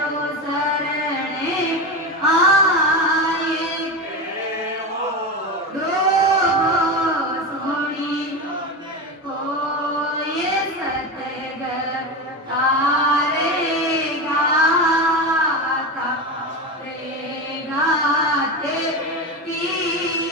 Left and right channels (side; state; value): both; normal; correlation 0.20